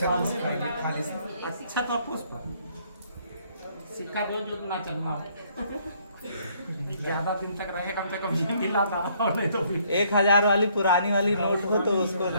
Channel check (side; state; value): both; inverted; correlation -0.66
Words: अच्छा तो पुष्प सिक्का दो जो ना चलना हो, ज्यादा दिन तक रहे, कम से कम ये दिलाता रहो, नहीं तो फिर 1000 वाली पुरानी वाली नोट हो तो उसको